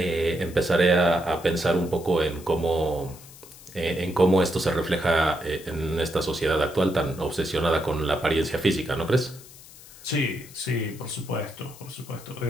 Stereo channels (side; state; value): left; noise; hiss, 19 dB below the sound